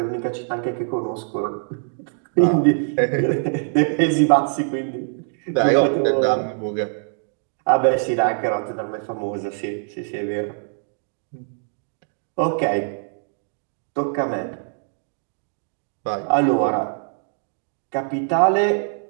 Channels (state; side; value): silent; left; 63 dB below the other